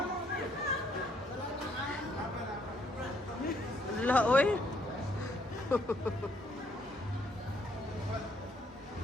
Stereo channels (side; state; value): both; normal; correlation 0.69